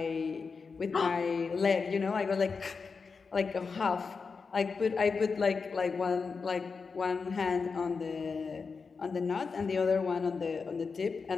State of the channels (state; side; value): quieter; right; 5.0 dB